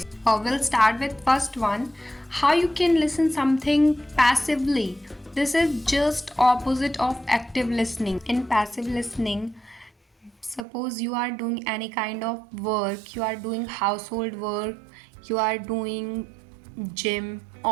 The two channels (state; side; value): drops out; left; at 10.6 s